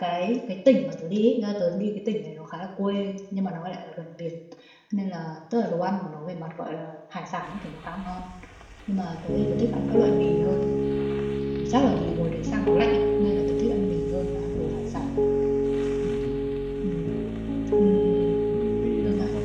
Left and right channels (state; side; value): identical; both; correlation 1.00